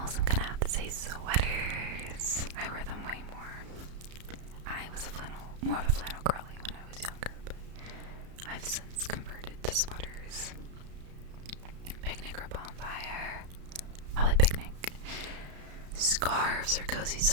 I'm gonna have to say sweaters. I wear them way more. I was more of a flannel girly when I was younger, but I've since converted to sweaters. Picnic or bonfire? Probably picnic. Scarves or cozy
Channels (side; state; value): left; late; 33 ms